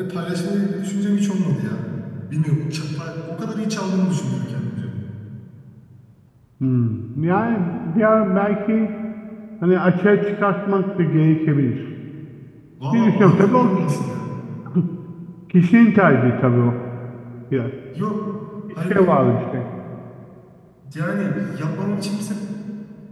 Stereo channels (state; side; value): identical; both; correlation 1.00